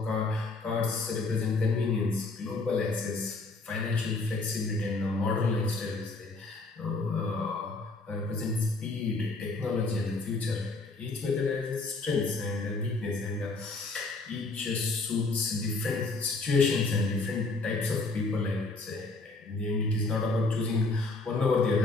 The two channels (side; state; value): right; quieter; 3.5 dB